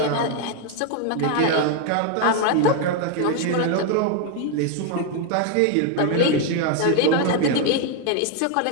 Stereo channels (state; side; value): different; both; correlation 0.01